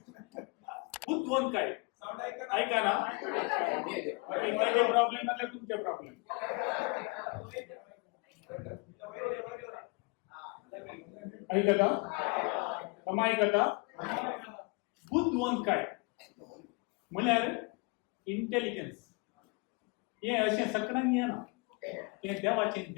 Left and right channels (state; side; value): quieter; right; 29.7 dB